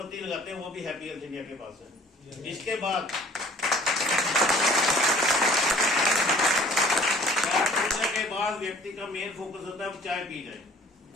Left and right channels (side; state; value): both; normal; correlation 0.52